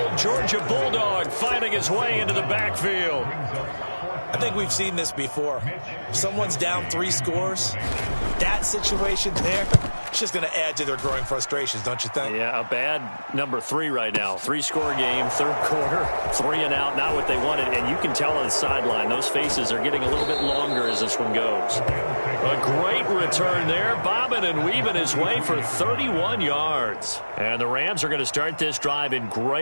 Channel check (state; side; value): inverted; both; correlation -1.00